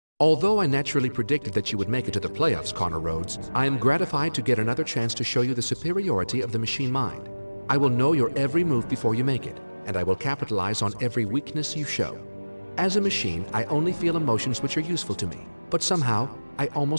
Although I naturally predicted that you would make it to the playoffs, Connor Rhoades, I am gratified to get another chance to show you the superiority of the machine mind. I will know your every move before you make it, and I will capitalize on every weakness you show. As a machine, I only feel emotions which are useful to me, but somehow, I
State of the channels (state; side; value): inverted; both; correlation -1.00